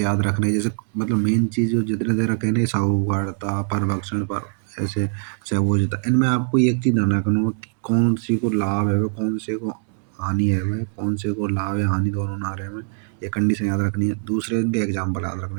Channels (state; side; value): silent; left; 57 dB below the other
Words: याद रखने, जैसे मतलब मेन चीज़ जो जितने देर रखे ना साहूकारिता परभक्षण पर ऐसे सहभोज्यता, इनमें आपको एक चीज़ ध्यान रखना हो कि कौन सी को लाभ है वह कौन से को हानि है वह कौन से को लाभ या हानि दोनों ना रहे में, ये कंडीशन याद रखनी है। दूसरे इनके एग्जाम्पल याद